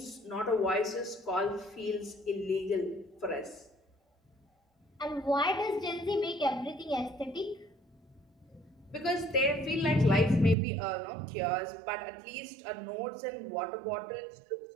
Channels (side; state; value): left; drops out; at 10.6 s